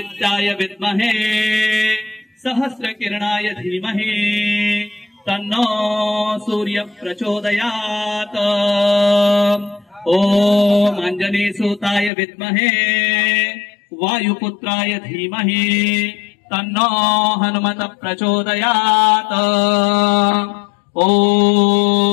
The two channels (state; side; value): drops out; right; at 12.1 s